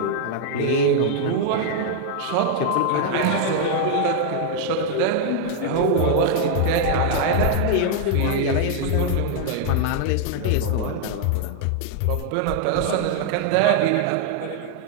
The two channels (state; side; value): different; both; correlation 0.00